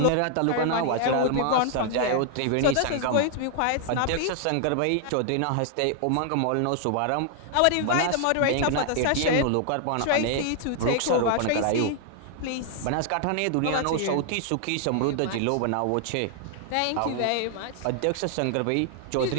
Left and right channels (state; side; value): different; both; correlation 0.00